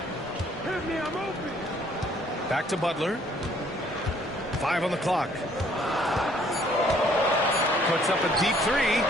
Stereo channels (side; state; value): both; normal; correlation 0.62